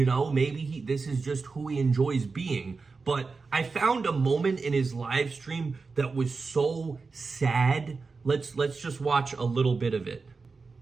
know, maybe this is just who he enjoys being. But I found a moment in his live stream that was so sad. Let's just watch a little bit of it.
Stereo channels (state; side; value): quieter; left; 4.4 dB